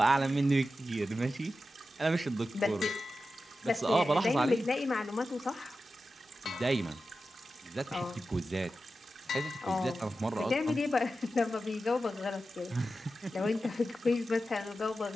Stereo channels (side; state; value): both; normal; correlation 0.92